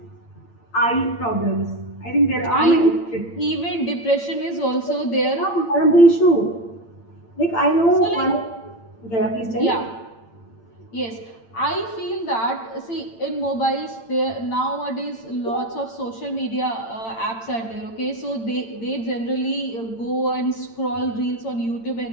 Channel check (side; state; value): right; late; 8.8 ms